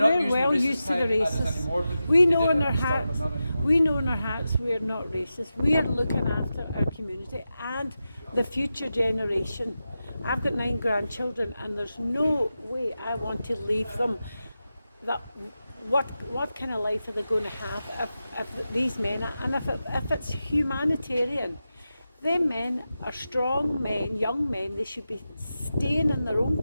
using well the racist used to the tag at us racist. anymore, but We they know did in at our the start, hearts. but not anymore. We know in our hearts we're not racist. We are looking after our community and the future generation. I've got 9 grandchildren, and there's no way I want to leave them. That what kind of life are they going to have if these men are, and if it's humanitarian. Them men are strong men, young men. They should be staying in their own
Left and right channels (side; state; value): both; inverted; correlation -0.91